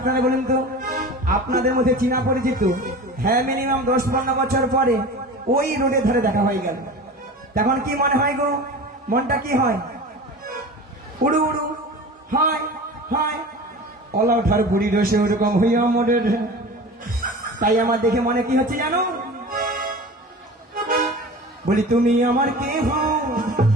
বলুন তো, আপনাদের মধ্যে চিনা পরিচিত হ্যাঁ মিনিমাম 10-15 বছর পরে ওই রোডের ধারে দেখা হয়ে গেল, তখন কি মনে হয় গো? মনটা কি হয়? উড়ু উড়ু হয় হয়। অলা ওঠার বুড়ি রসে ওরকম হইয়া মোড়ের। তাই আমার দেখে মনে কি হচ্ছে জানো? বলি তুমি আমার কে হও?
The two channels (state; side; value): normal; both; correlation 0.35